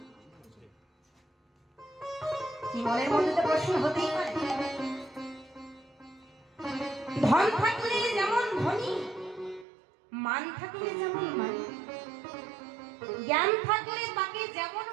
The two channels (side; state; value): left; drops out; at 9.7 s